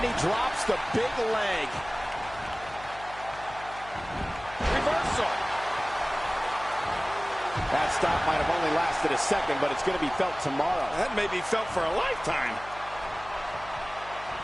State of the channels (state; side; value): noise; left; hum, 18 dB below the sound